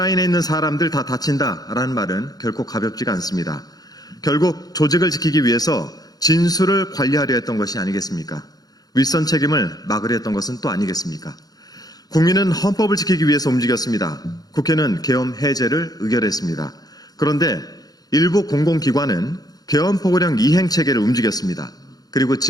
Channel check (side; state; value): right; late; 0.19 ms